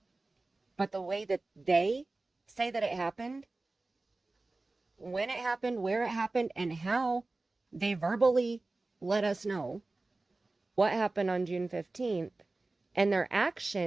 But the way that they say that it happened, when it happened, where it happened, and how they verbally let us know what happened on June 15th, and their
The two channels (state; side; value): quieter; left; 3.3 dB